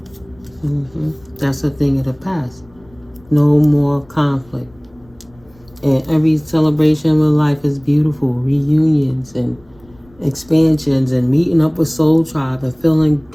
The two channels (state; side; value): noise; left; rumble, 28 dB below the sound